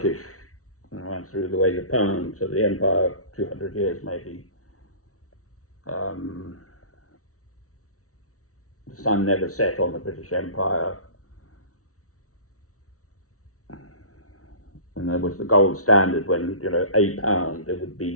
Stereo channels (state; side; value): late; right; 0.65 ms